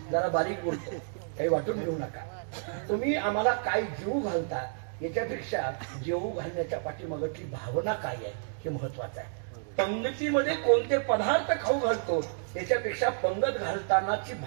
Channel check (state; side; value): silent; left; digital silence